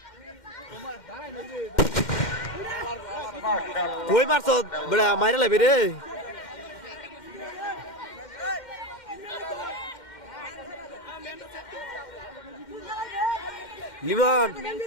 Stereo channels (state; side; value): late; right; 2.1 ms